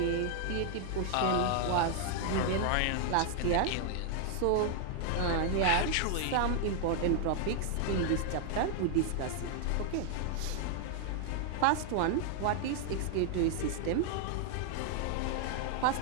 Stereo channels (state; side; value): different; both; correlation 0.00